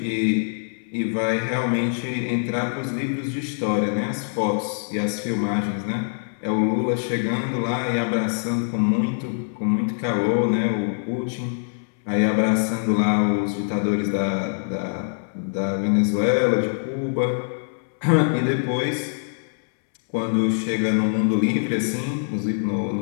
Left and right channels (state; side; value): silent; right; 63 dB below the other